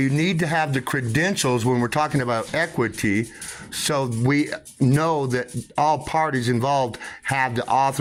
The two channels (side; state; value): both; identical; correlation 1.00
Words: need to have the credentials when we're talking about equity, so we know that all parties involved have the